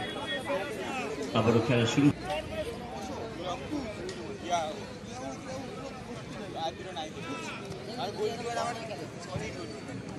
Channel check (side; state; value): both; identical; correlation 1.00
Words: আবারও খেলা শুরু।